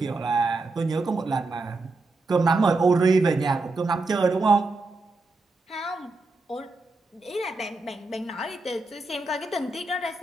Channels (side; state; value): left; quieter; 3.3 dB